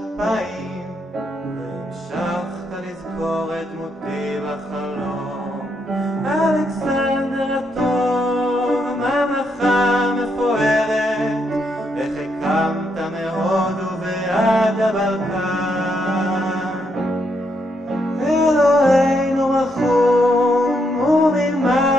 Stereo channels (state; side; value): normal; both; correlation 0.77